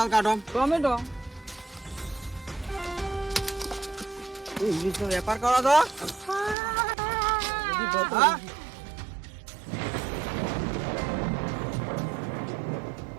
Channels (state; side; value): drops out; left; at 6.6 s